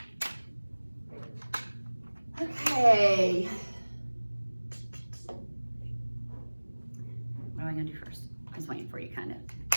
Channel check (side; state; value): both; inverted; correlation -1.00